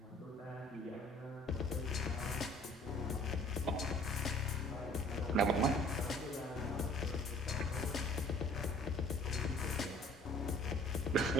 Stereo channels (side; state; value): both; normal; correlation 0.53